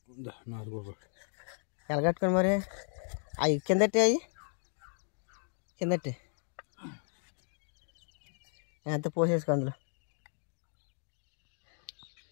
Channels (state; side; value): silent; right; 55 dB below the other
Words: ఎలగట్టుకొని మరి అవి కిందట్టి అవి కిందట్టి ఎంత పోసేసుకో అందులో.